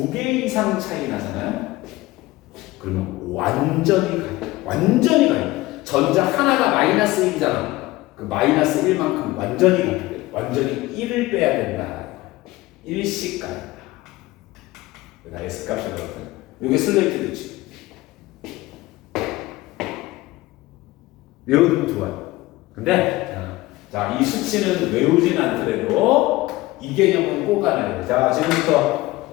이상 차이 나잖아요? 그러면 완전히 가려. 완전히 가려. 전자 하나가 마이너스 1이잖아. 그 마이너스 1만큼 완전히 가려. 완전히 1을 빼야 된다. 1씩 가려. 나 S 값이 그렇거든. 이게 슬레이트 규칙. 외우면 좋아요. 근데 자, 이 수치는 외우진 않더라도 이 개념은 꼭 알아야 돼. 자,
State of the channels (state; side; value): quieter; right; 18.9 dB